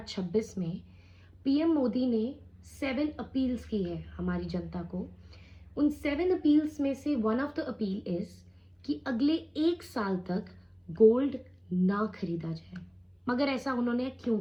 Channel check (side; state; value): both; identical; correlation 1.00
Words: में पीएम मोदी ने 7 अपील्स की है हमारी जनता को। उन 7 अपील्स में से one of the appeal is कि अगले 1 साल तक गोल्ड ना खरीदा जाए। मगर ऐसा उन्होंने क्यों